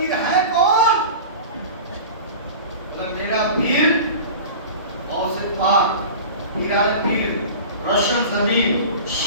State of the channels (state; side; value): inverted; both; correlation -0.35